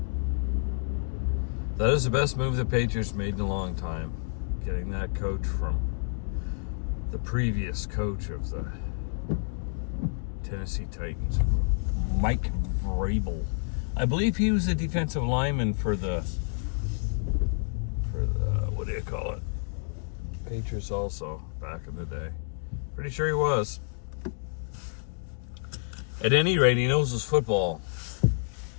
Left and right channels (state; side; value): silent; right; 59 dB below the other